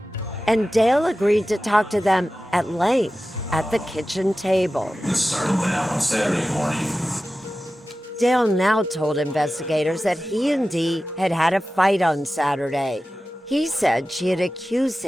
and Dale agreed to talk to them at length at the kitchen table. This started on Saturday morning. Dale now told investigators that he and Dee had had a fight on Saturday. He said she had accused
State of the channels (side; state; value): both; normal; correlation 0.94